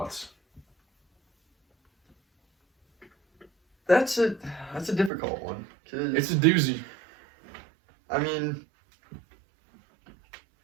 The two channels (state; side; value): drops out; left; at 5.1 s